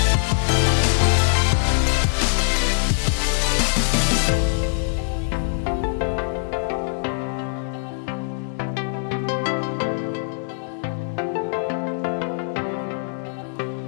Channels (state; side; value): silent; right; digital silence